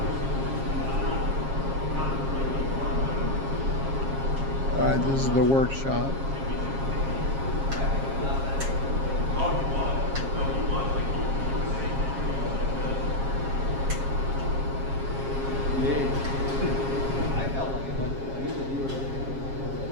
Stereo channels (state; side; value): late; left; 7.4 ms